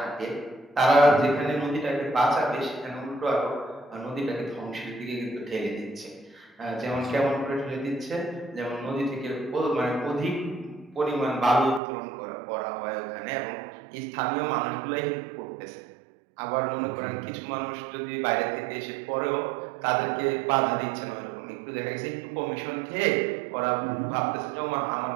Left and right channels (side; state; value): left; drops out; at 11.8 s